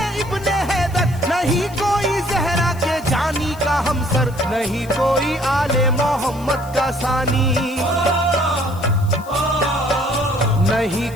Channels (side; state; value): left; noise; hiss, 21 dB below the sound